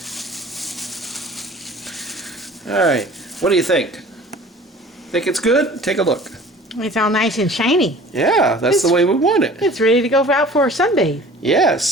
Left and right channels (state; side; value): normal; both; correlation 0.46